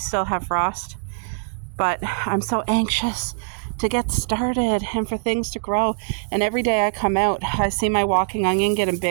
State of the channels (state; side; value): silent; left; 64 dB below the other